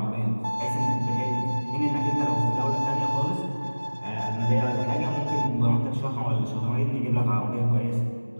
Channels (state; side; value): inverted; both; correlation -1.00